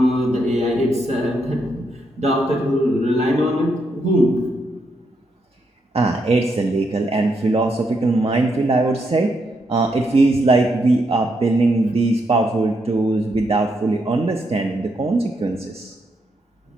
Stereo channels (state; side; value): normal; both; correlation 0.79